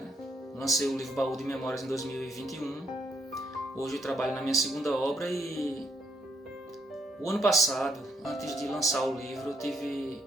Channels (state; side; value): normal; both; correlation 0.74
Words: Lancei o livro Baú de Memórias em 2021. Hoje eu trabalho na minha segunda obra e o ano passado, antes de lançar o livro, eu tive,